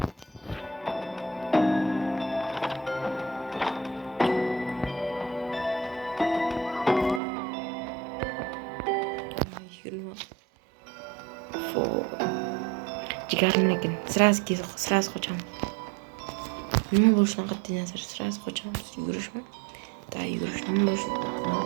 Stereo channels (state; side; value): drops out; left; at 7.2 s